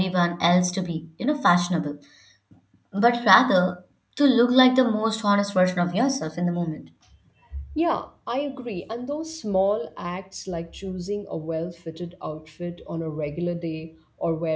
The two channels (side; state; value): both; identical; correlation 1.00